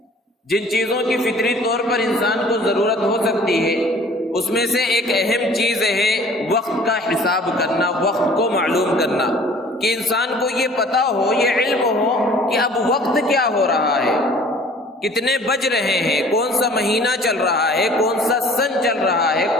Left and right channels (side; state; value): both; normal; correlation 0.50